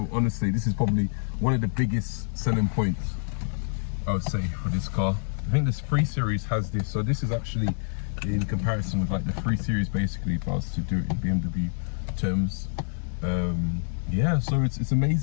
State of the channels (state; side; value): silent; right; digital silence